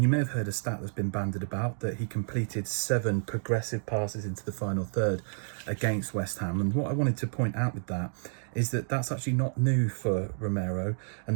you may have heard a stat that's been bandied about that he completed 7 progressive passes into the final third against West Ham. And what I wanted to point out with that is that that's actually not new for Romero,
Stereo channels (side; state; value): left; silent; digital silence